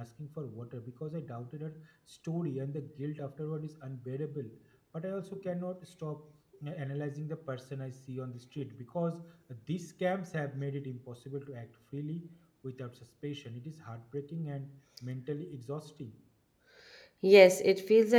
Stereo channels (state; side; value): identical; both; correlation 1.00